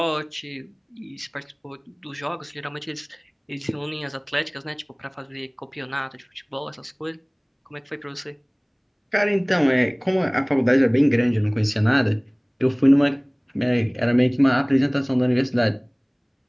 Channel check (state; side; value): identical; both; correlation 1.00